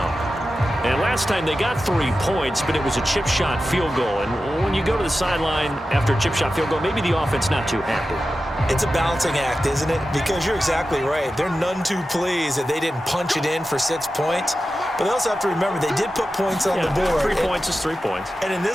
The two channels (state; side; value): normal; both; correlation 0.93